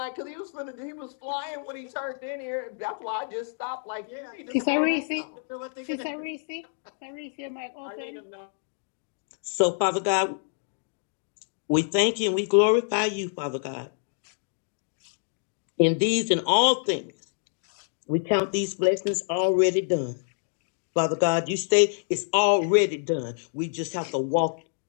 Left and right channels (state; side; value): silent; right; digital silence